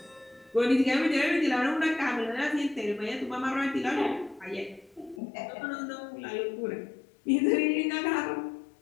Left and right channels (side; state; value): right; drops out; at 5.2 s